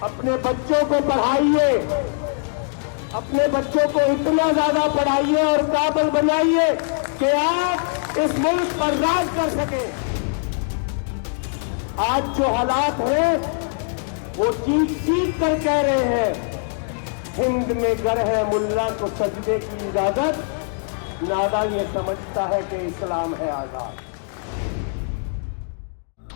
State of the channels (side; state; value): right; silent; digital silence